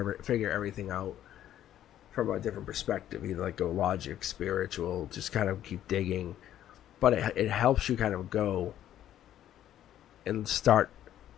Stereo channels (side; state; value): right; quieter; 11.6 dB